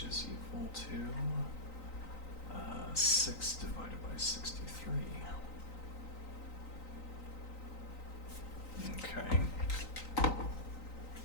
is equal to 6 divided by 63. Okay.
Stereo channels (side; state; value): right; late; 3.9 ms